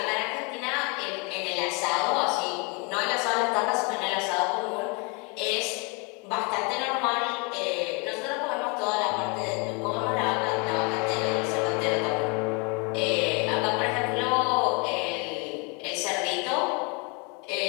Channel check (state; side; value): quieter; right; 30.4 dB